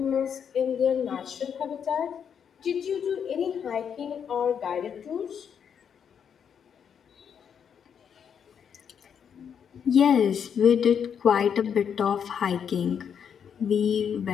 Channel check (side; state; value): right; quieter; 7.7 dB